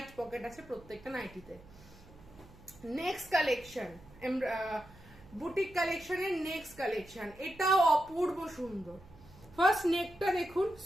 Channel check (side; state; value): right; noise; hum, 22 dB below the sound